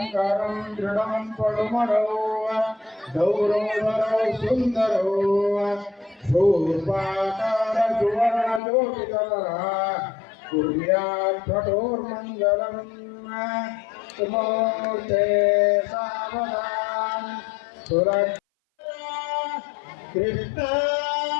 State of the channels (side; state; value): right; drops out; at 8.6 s